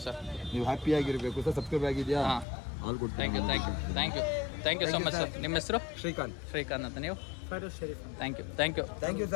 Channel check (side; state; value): right; drops out; at 2.5 s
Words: sir. ನೀವು ಹ್ಯಾಪಿ ಆಗಿರಬೇಕು ಸರ್. ಸಬ್ಸ್ಕ್ರೈಬ್ ಆಗಿದೆಯಾ? All good. Thank you so much sir. ನಿಮ್ಮ ಹೆಸರು? ಶ್ರೀಕಾಂತ್ ಅಂತ. ನೀವು? Thank you